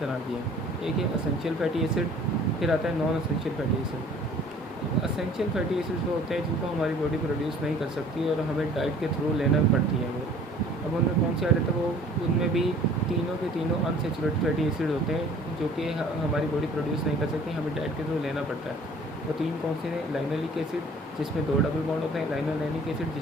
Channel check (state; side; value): normal; both; correlation 0.51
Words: तरह की है। एक है असेंशियल फैटी एसिड, फिर आता है non essential fatty acid. Essential fatty acids वो होते हैं जिनको हमारी बॉडी प्रोड्यूस नहीं कर सकती और हमें डाइट के थ्रू लेना पड़ती है वो। अब उनमें कौन से आ जाते हैं, वो उनमें भी तीनों के तीनों अनसैचुरेटेड फैटी एसिड होते हैं जो कि हमारी बॉडी प्रोड्यूस नहीं कर सकती, हमें डाइट के थ्रू लेना पड़ता है। वो तीन कौन से हैं, लाइनोलिक एसिड जिसमें 2 डबल बॉन्ड होते हैं, लाइनोलेनिक एसिड